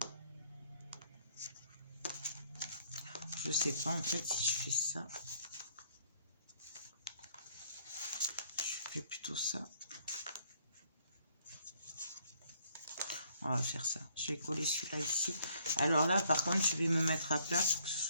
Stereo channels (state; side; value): inverted; both; correlation -0.64